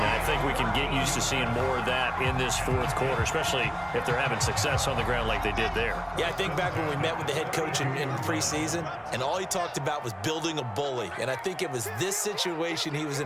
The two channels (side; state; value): both; identical; correlation 1.00